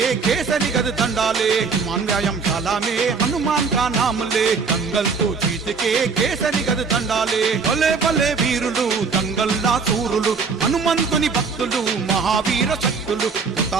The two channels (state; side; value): quieter; left; 5.1 dB